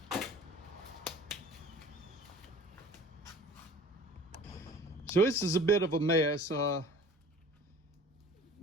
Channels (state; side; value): normal; both; correlation 0.45